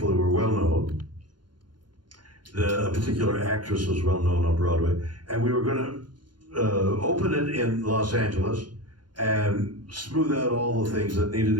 who were well known. A particular actress was well known on Broadway, and we were going to open it in Los Angeles and smooth out all the things that needed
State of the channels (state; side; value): late; left; 0.71 ms